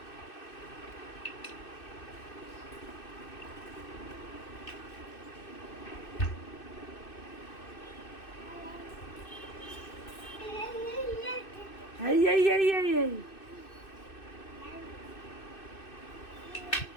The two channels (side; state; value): right; late; 2.6 ms